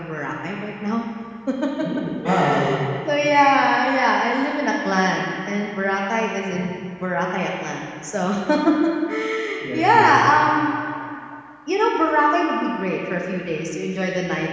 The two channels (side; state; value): both; identical; correlation 1.00